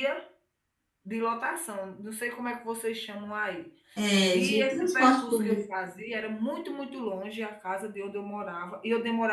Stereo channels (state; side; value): identical; both; correlation 1.00